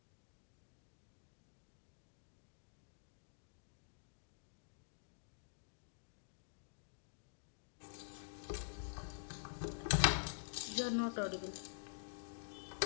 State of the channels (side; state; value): right; silent; digital silence